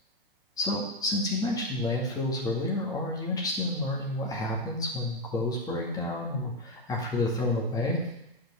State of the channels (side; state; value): both; normal; correlation 0.08